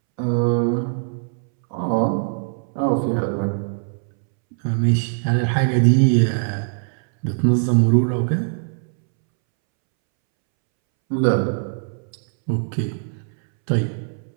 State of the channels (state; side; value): silent; left; 65 dB below the other